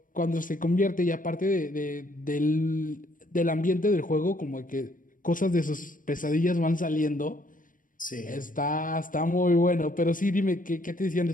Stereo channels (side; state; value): right; late; 0.39 ms